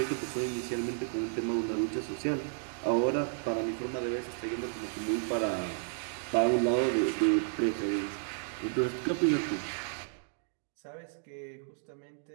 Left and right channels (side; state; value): left; silent; digital silence